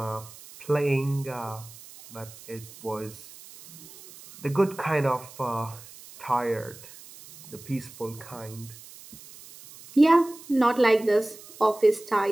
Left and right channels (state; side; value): noise; right; hiss, 19 dB below the sound